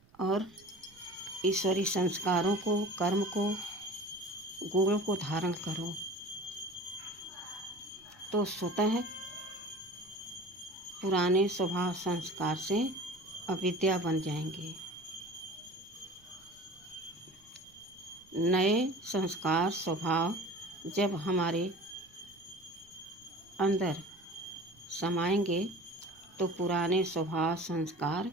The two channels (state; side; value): noise; right; rumble, 29 dB below the sound